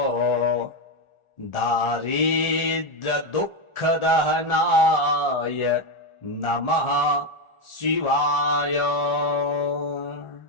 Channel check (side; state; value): right; late; 1.4 ms